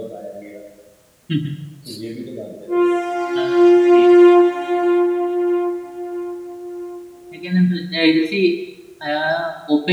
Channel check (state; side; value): identical; both; correlation 1.00